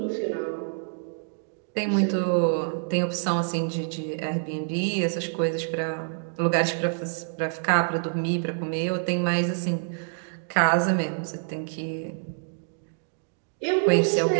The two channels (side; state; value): left; silent; digital silence